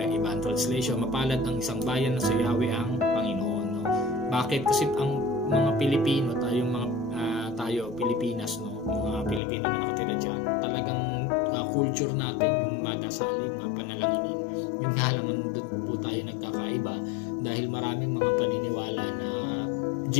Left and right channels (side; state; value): right; drops out; at 9.4 s